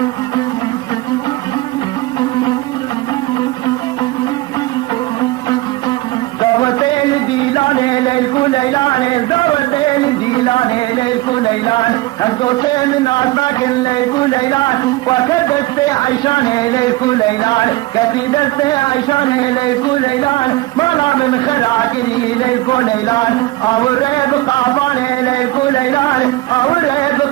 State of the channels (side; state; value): left; quieter; 19.5 dB